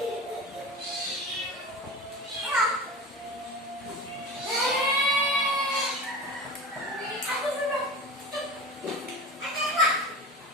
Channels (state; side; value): normal; both; correlation 0.31